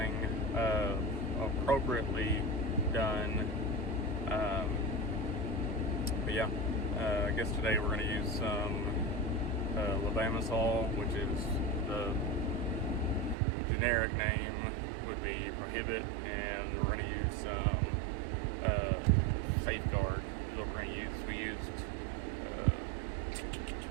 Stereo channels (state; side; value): drops out; left; at 13.4 s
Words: appropriately done. But yeah, I guess today we're going to use some levamisol, which is the generic name would be Prohibit, and we're going to use some Safeguard is what we're going to use. We used